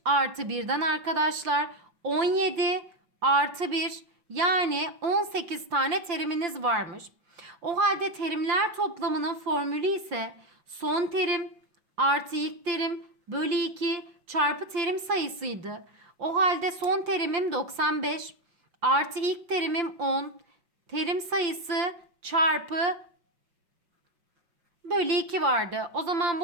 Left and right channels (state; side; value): late; left; 5.8 ms